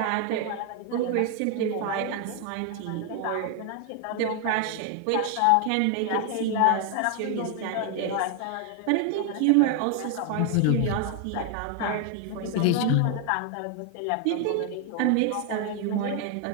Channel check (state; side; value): different; both; correlation 0.01